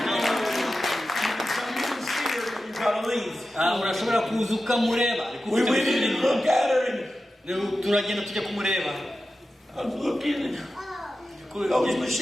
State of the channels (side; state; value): both; normal; correlation 0.92